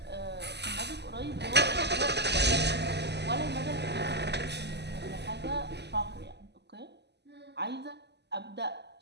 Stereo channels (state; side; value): late; left; 0.50 ms